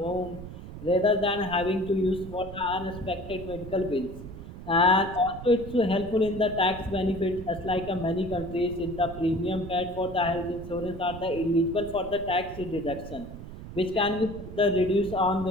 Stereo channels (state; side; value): noise; right; rumble, 12 dB below the sound